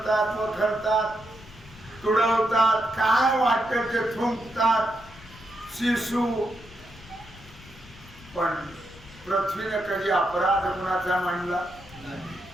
वखरतात, तुडवतात, काय वाटत ते थुंकतात, शिशू. पण पृथ्वीने कधी अपराध कोणाचा मानला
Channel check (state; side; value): noise; left; rumble, 21 dB below the sound